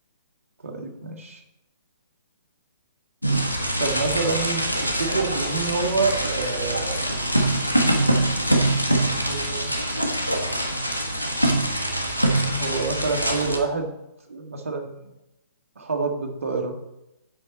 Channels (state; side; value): inverted; both; correlation -0.71